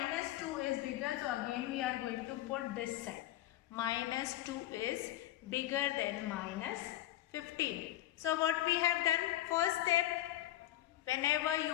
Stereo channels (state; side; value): quieter; right; 14.5 dB